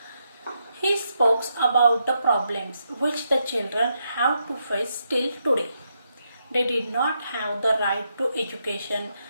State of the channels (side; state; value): both; inverted; correlation -0.81